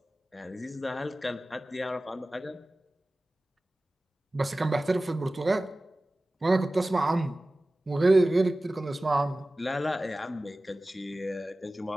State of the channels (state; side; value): normal; both; correlation 0.97